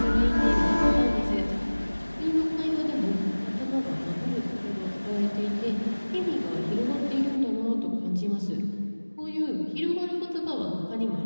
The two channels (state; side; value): inverted; both; correlation -1.00